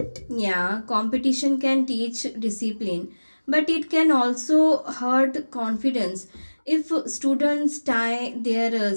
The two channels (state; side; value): inverted; both; correlation -1.00